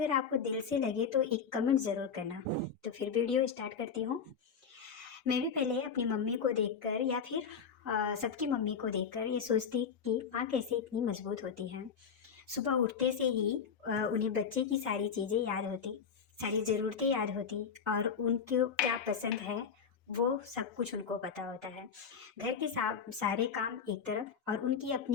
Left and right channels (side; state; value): right; quieter; 6.5 dB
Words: आपको दिल से लगे तो एक कमेंट ज़रूर करना। तो फिर वीडियो स्टार्ट करती हूँ। मैं भी पहले अपनी मम्मी को देखकर या फिर सबकी मम्मी को देखकर ये सोचती कि माँ कैसे इतनी मजबूत होती है। सुबह उठते से ही उन्हें बच्चे की सारी चीज़ें याद होती, सारी ज़रूरतें याद होती और उनको क्या पसंद है वो सब कुछ उनको पता होता है। घर के सारे काम एक तरफ और उनकी